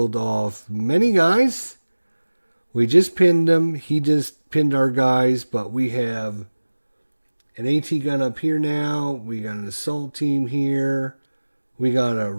off many guys. We just pinned him. He just pinned our guys, but we have an AT gun up here now. We got an assault team here. We got a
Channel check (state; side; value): inverted; both; correlation -1.00